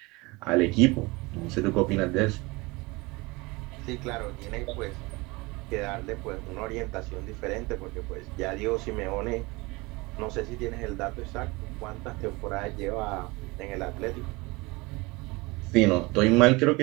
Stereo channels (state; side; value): quieter; left; 24.2 dB